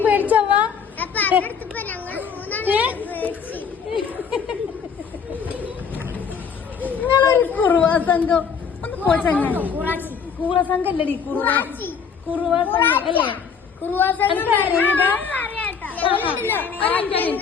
പേടിച്ചവാ? അപ്പൊ അടുത്തപ്പോ ഞങ്ങൾ മൂന്നാളി പേടിച്ച്. നിങ്ങളൊരു കുറസംഘം ഒന്ന് പോച്ചങ്ങ. കുറസംഘം അല്ലടി കുറസംഘം അല്ലേ?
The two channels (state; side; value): quieter; right; 6.4 dB